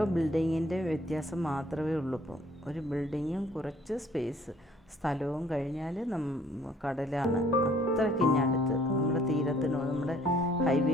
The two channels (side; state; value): both; normal; correlation 0.59